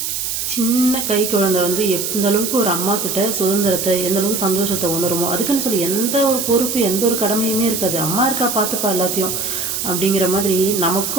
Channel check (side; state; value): right; noise; hiss, 2 dB below the sound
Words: சின்ன கை குழந்தை எந்த அளவுக்கு ஒரு அம்மா கிட்ட சுதந்திரத்தை, எந்த அளவுக்கு சந்தோஷத்தை உணருமோ, அதுக்குன்னு சொல்லி எந்த ஒரு பொறுப்பு எந்த ஒரு கடமையுமே இருக்காது. அம்மா இருக்கா பார்த்துப்பா எல்லாத்தையும் அப்படிங்கிற மாதிரி